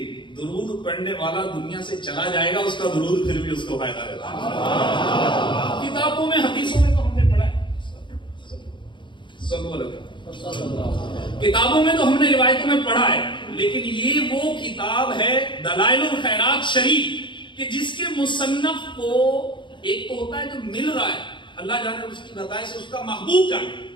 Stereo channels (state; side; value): late; right; 0.23 ms